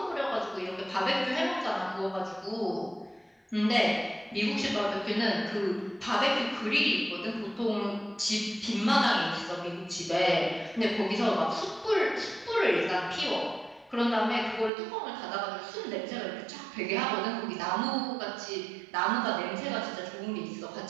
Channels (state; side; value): drops out; left; at 14.7 s